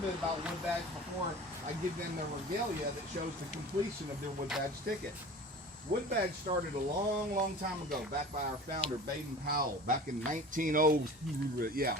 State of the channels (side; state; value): both; normal; correlation 0.39